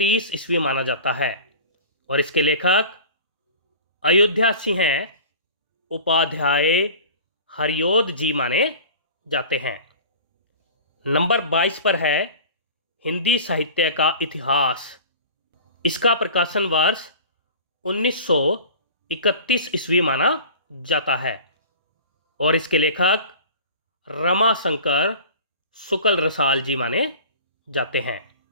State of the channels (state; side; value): inverted; both; correlation -0.40